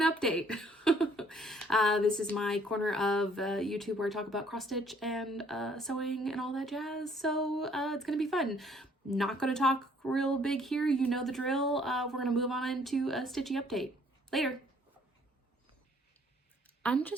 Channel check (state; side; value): normal; both; correlation 0.62